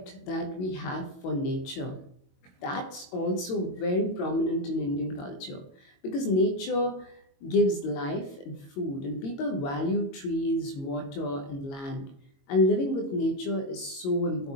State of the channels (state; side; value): late; right; 22 ms